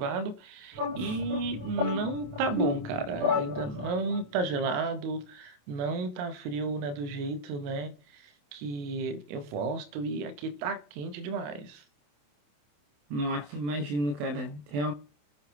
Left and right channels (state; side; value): late; left; 27 ms